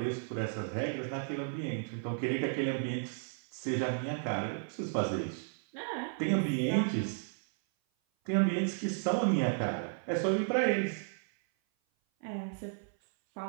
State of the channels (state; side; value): silent; left; 55 dB below the other